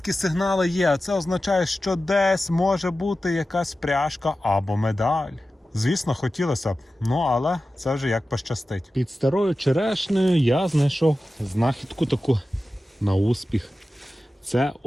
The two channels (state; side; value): normal; both; correlation 0.94